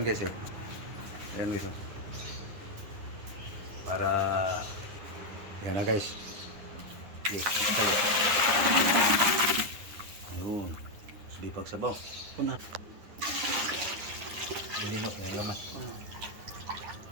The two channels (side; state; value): left; late; 10 ms